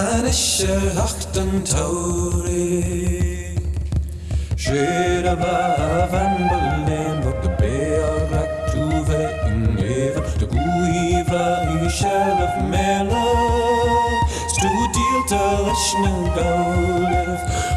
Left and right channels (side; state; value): both; identical; correlation 1.00